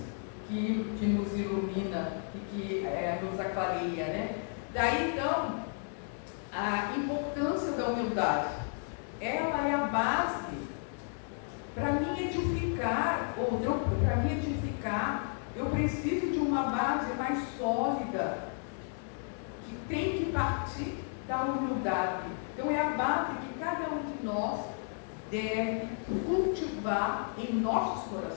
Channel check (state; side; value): silent; right; 56 dB below the other